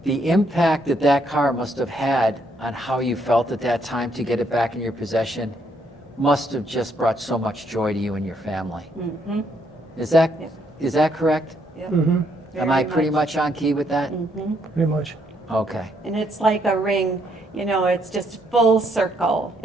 The impact that car must have had on how you felt at that time to get it back in your possession must have just brought so much joy to you and your family. Mm-hmm. Is that Yep. is that correct? Yep. Mm-hmm. Am I pretty much on key with that? Mm-hmm. Pretty much. Okay. And it's like a ring, it's just full circle.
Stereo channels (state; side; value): normal; both; correlation 0.72